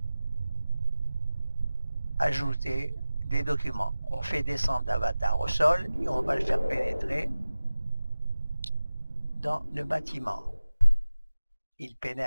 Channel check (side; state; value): both; inverted; correlation -0.96